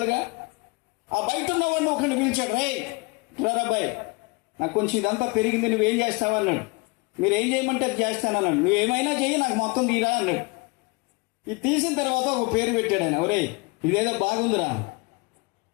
ఆ బయట ఉన్నవాడిని ఒకరిని పిలిచాడు, రే రాబాయ్, నాకు కొంచెం ఇదంతా పెరిగింది, నువ్వేం చేస్తావా అన్నాడు. మీరు ఏం చేయమంటే అది చేస్తానన్నాడు. నువ్వేమైనా చెయ్యి, నాకు మొత్తం తీరా అన్నాడు. ఇది తీసిన తర్వాత ఒక పేరు పెట్టాడు ఆయన, ఒరే ఇదేదో బాగుందిరా.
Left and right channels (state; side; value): quieter; right; 27.9 dB